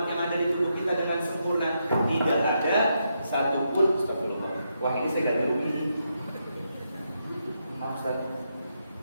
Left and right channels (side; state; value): both; inverted; correlation -0.82